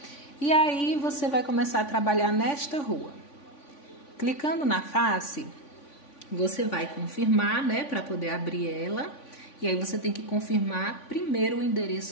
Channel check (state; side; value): late; right; 3.5 ms